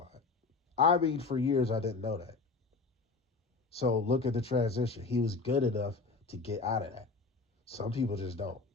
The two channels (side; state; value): right; quieter; 4.0 dB